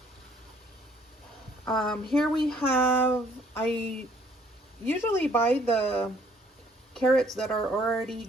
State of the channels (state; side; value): normal; both; correlation 0.61